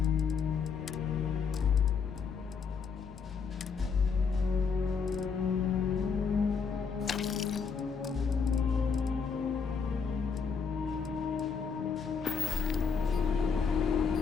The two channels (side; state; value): right; quieter; 5.7 dB